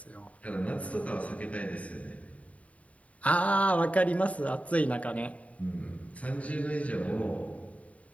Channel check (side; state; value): right; late; 0.067 ms